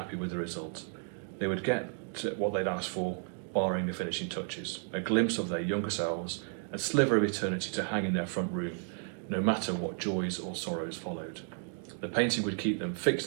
with the result. They would get what they'd asked for, barring the finishing touches, a glimpse of their younger selves, a sliver of eternity to hang in their front room, no matter what joys or sorrows followed. The painting would keep them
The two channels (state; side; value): silent; left; 56 dB below the other